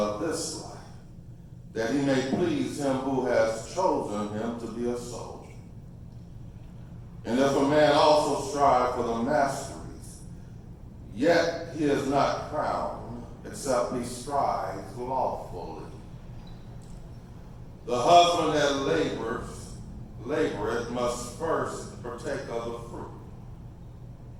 this life, that he may please him who has chosen him to be a soldier. And if a man also strive for the masteries, yet he is not crowned, except he strives lawfully. The husband that laboreth must first partake of the fruit.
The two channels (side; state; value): both; identical; correlation 1.00